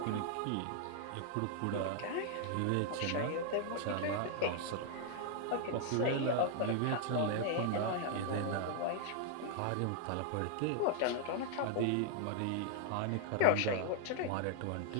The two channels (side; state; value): both; different; correlation 0.00